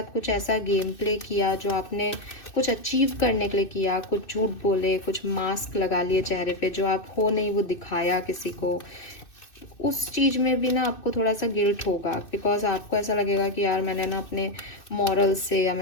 कुछ ऐसा गेम प्ले किया जो आपने कुछ अचीव करने के लिए किया, कुछ झूठ बोले, कुछ मास्क लगा लिए चेहरे पे, जो आप हो नहीं वो दिखाया किसी को, उस चीज़ में भी ना आपको थोड़ा सा गिल्ट होगा, बिकॉज आपको ऐसा लगेगा कि यार मैंने ना अपने मॉरल से या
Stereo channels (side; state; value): right; late; 2.6 ms